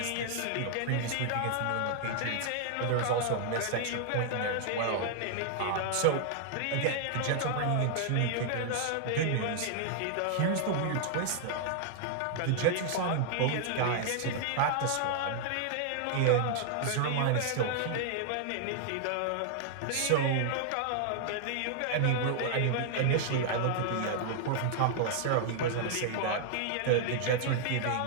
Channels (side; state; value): both; different; correlation -0.01